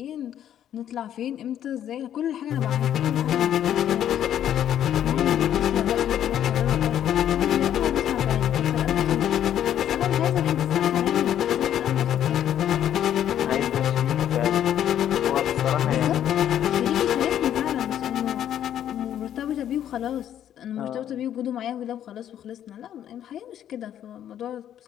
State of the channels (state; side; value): quieter; right; 10.6 dB